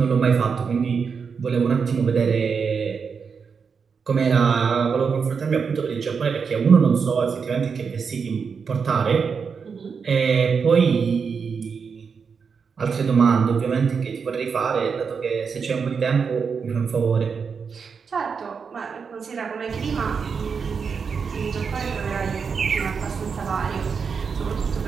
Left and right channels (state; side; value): quieter; left; 5.8 dB